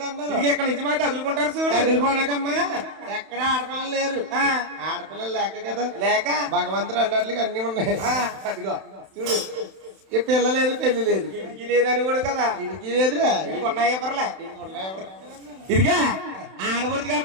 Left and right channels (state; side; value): late; left; 31 ms